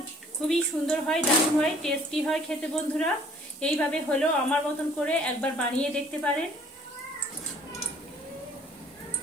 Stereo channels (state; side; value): normal; both; correlation 0.56